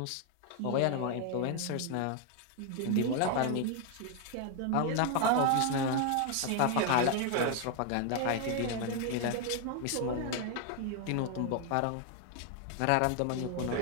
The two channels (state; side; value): different; both; correlation 0.00